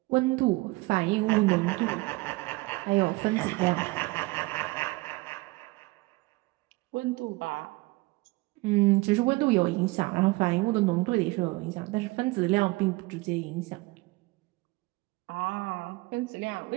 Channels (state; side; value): quieter; left; 22.7 dB